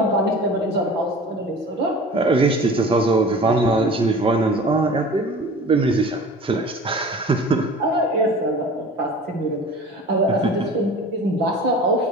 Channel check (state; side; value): normal; both; correlation 0.41